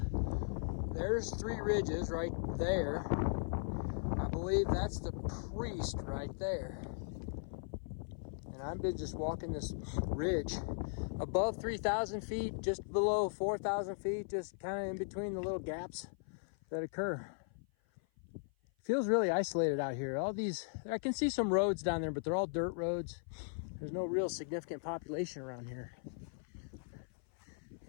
there's 3 ridges right there. I believe that's the Priest right there. And I've been just walking this ridge above 3,000 feet, just below 4,000 feet, just kind of in between the little gaps that occur. Feels really isolated out here. All these, I can see some roads down there, but they're all dirt roads. There's no real significant population around here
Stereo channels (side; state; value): right; silent; 52 dB below the other